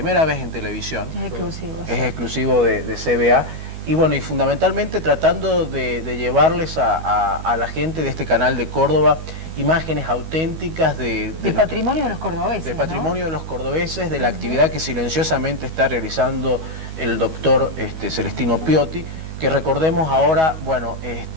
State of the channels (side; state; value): left; late; 12 ms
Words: vez en televisión. Es exclusivo. Es exclusivo de CBA. Y bueno, y fundamentalmente tratando de llevarles a la gente de este canal de Córdoba imágenes auténticas de patrimonio de los cordobeses. De patrimonio, ¿no?, de los cordobeses, de la actividad que silenciosamente está realizando el doctor Celestino Piotti, que recordemos ahora, bueno,